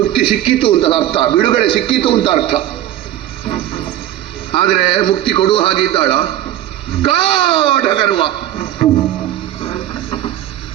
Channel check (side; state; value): left; quieter; 12.7 dB